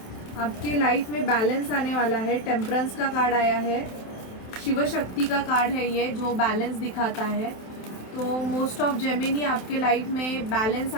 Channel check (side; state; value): right; late; 27 ms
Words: आपके लाइफ में बैलेंस आने वाला है। टेम्परेंस का कार्ड आया है, शिव शक्ति का कार्ड है ये, जो बैलेंस दिखाता है। तो मोस्ट ऑफ जेमिनी आपके लाइफ में बैलेंस